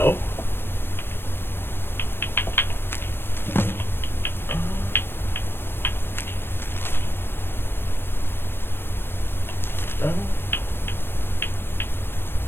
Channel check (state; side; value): late; right; 0.10 ms